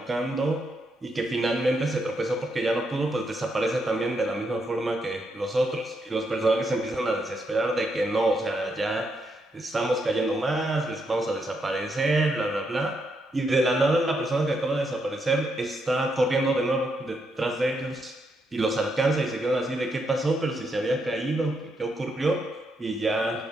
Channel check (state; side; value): normal; both; correlation 0.79